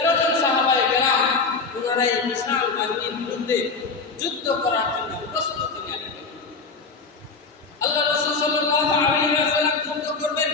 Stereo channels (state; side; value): quieter; right; 4.5 dB